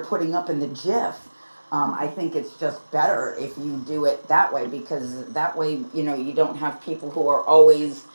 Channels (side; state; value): both; inverted; correlation -1.00